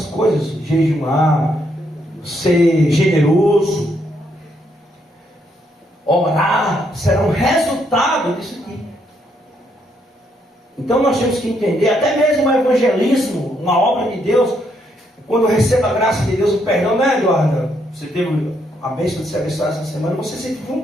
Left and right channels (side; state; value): both; normal; correlation 0.74